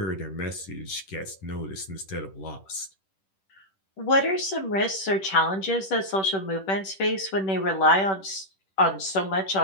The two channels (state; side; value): late; right; 10 ms